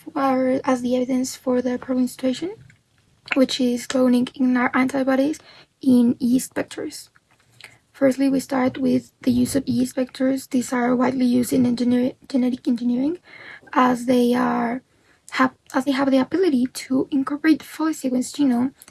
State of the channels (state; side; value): identical; both; correlation 1.00